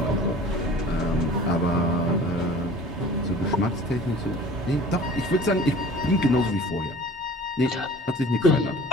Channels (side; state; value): both; normal; correlation 0.45